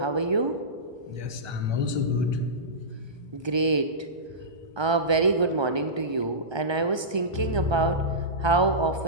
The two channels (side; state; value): left; late; 1.2 ms